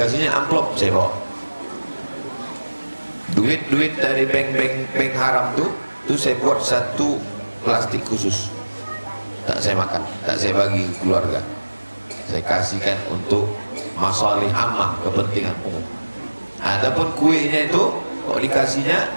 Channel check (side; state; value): both; inverted; correlation -1.00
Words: amplop, saya bawa. Duit-duit dari bank haram tuh saya buat satu plastik khusus. Tak saya makan, tak saya bagi ke keluarga. Saya kasihkan untuk masalih ammah, kepentingan umum. Adapun kuenya itu kok dikasihnya,